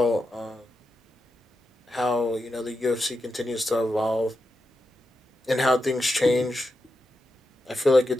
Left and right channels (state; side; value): normal; both; correlation 0.87